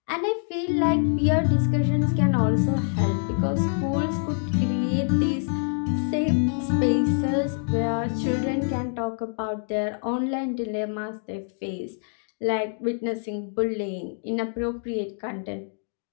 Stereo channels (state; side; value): silent; right; digital silence